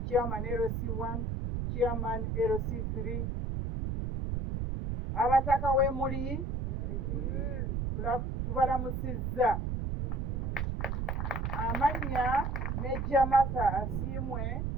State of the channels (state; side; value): noise; right; rumble, 1 dB below the sound